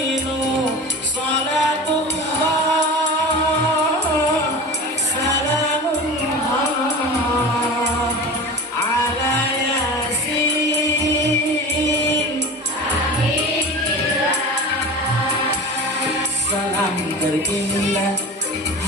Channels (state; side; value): normal; both; correlation 0.33